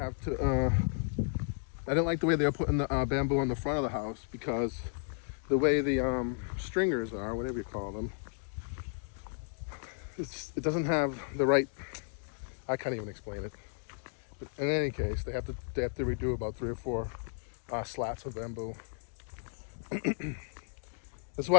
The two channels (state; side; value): silent; right; digital silence